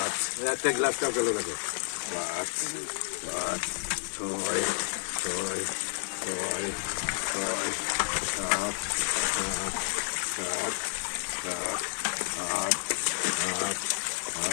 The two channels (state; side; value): silent; right; digital silence